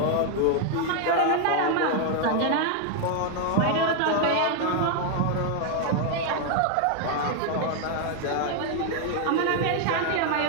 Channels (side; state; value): both; different; correlation 0.00